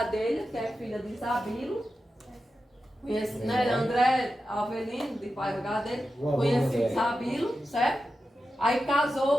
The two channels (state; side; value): normal; both; correlation 0.91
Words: que é filha de Isabilo, né, André Avelino, de pai do Gadelha, conheceu Isabilo, certo? Aí